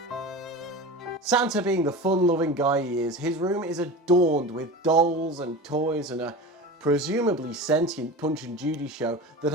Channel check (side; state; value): both; normal; correlation 0.30